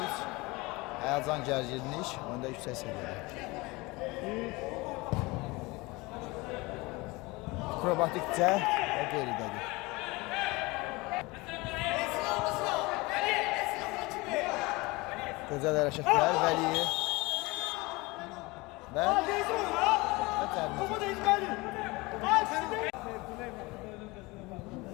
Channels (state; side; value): quieter; right; 23.6 dB